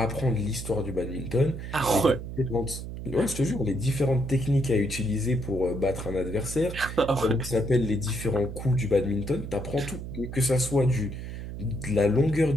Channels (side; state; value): right; noise; hum, 8 dB below the sound